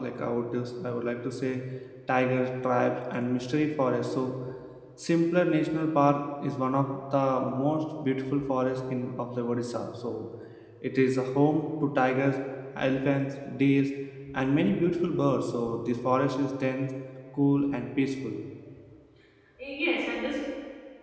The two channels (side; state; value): both; identical; correlation 1.00